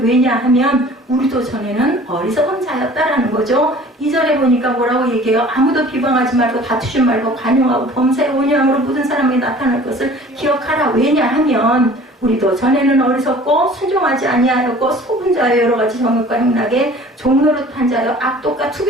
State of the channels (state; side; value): normal; both; correlation 0.47